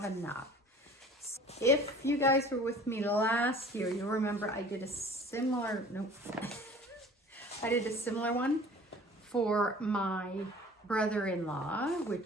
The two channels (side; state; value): both; normal; correlation 0.46